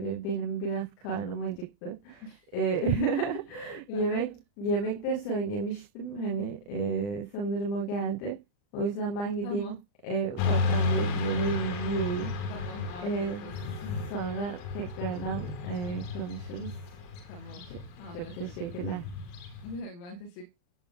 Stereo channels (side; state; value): right; late; 40 ms